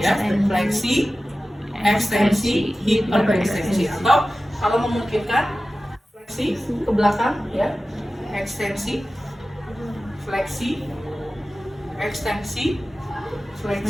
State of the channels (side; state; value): both; normal; correlation 0.95